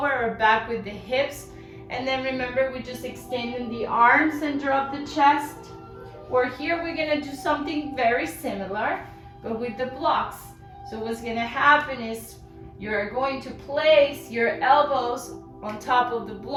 or back with the hips. And then remember, we're just extending the arms and drop the chest. Or here we're gonna do something very similar, but with the blocks. So what's gonna happen is you're going to place your elbows on top of the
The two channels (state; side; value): identical; both; correlation 1.00